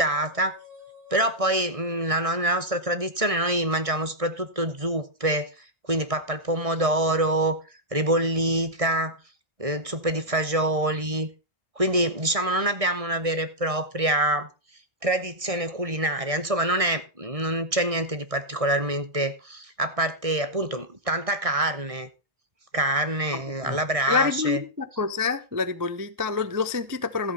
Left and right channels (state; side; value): late; left; 1.6 ms